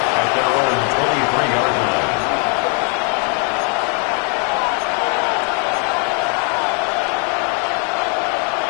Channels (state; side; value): quieter; right; 39.4 dB